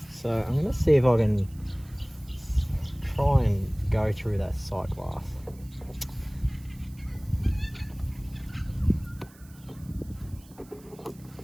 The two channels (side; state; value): right; noise; hiss, 25 dB below the sound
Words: So I'm going to see if I can try and go through that sight glass.